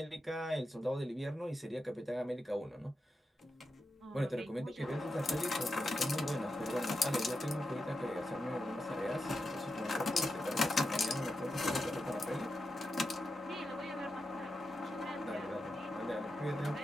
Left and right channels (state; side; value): normal; both; correlation 0.88